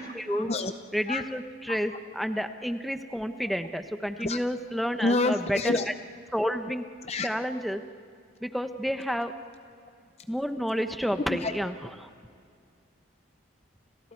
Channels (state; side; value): normal; both; correlation 0.77